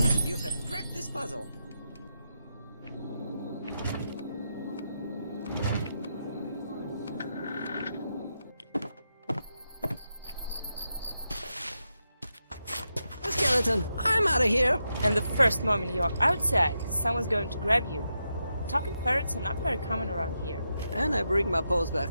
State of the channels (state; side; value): inverted; both; correlation -0.85